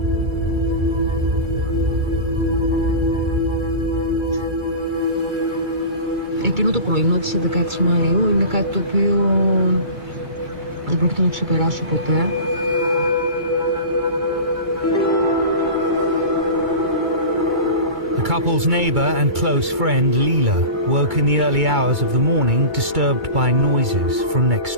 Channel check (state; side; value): late; left; 2.3 ms